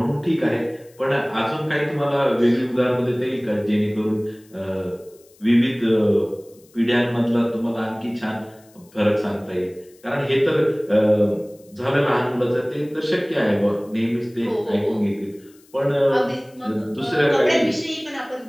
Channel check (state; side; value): noise; left; hiss, 29 dB below the sound